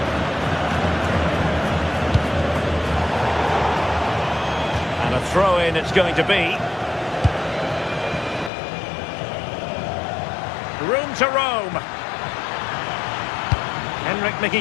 And a throw-in it's going to be. Room to roam.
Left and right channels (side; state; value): right; drops out; at 8.5 s